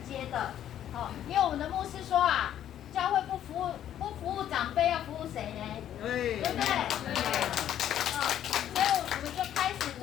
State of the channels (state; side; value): quieter; right; 10.9 dB